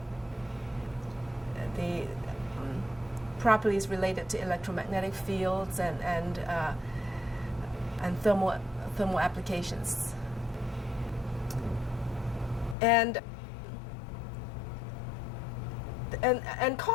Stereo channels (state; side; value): drops out; right; at 12.8 s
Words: the properties related to electromagnetic fields and thermal applications. And